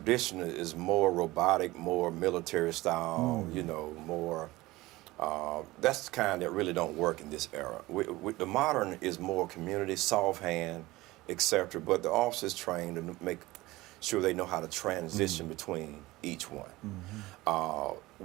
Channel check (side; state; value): left; quieter; 19.4 dB